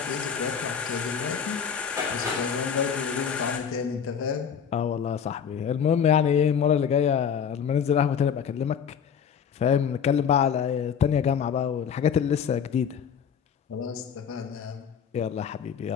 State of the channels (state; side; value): quieter; right; 7.5 dB